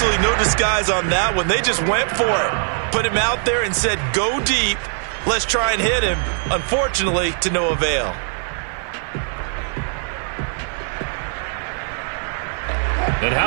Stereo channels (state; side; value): silent; left; 59 dB below the other